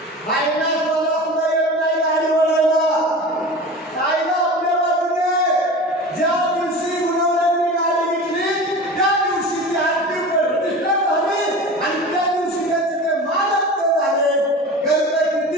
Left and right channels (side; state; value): both; normal; correlation 0.33